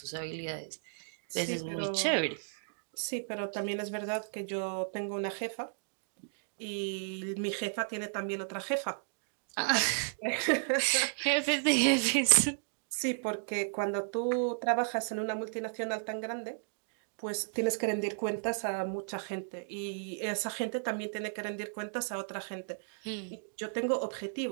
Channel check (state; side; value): silent; left; digital silence